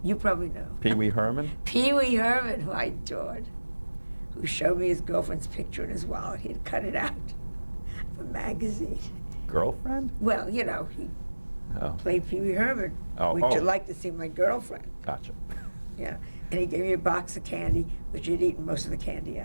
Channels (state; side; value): inverted; both; correlation -1.00